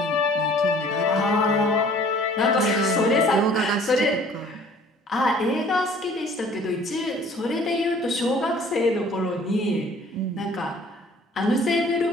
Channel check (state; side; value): normal; both; correlation 0.53